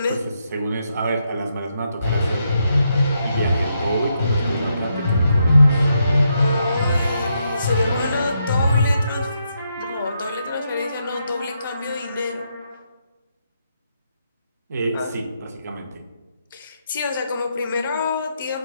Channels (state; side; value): inverted; both; correlation -0.79